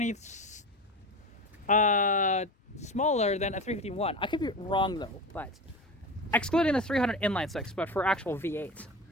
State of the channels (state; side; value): normal; both; correlation 0.28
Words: smaller than a 351. I could be wrong though, but excluding the 300 inline 6, but for actual V8.